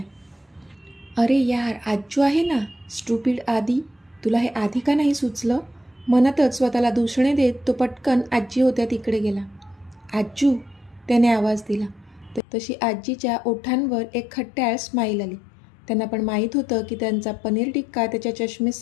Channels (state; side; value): drops out; right; at 12.4 s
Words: अरे यार, आज्जू आहे ना. स्टुपिड आदी, तुला हे आधी का नाही सुचलं? मनातच स्वतःला दूषणे देत तो पटकन आजी होत्या तिकडे गेला. आज्जू, त्याने आवाज दिला. तशी आजीच्या ओठांवर एक खट्याळ स्माईल आली. त्यांना पण माहीत होतं की त्यांचा पनीर टिक्का त्याच्या